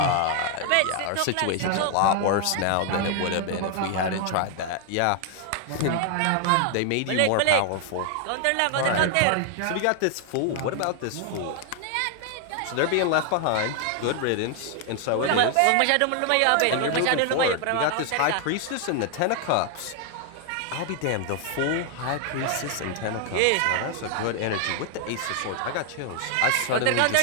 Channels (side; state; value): both; different; correlation 0.00